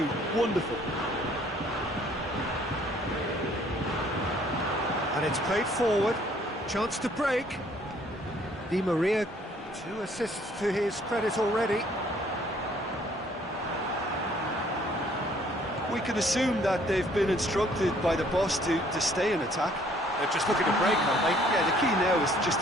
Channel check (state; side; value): normal; both; correlation 0.61